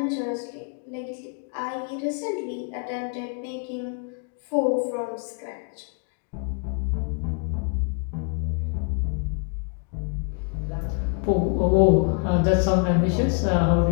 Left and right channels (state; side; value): quieter; right; 38.6 dB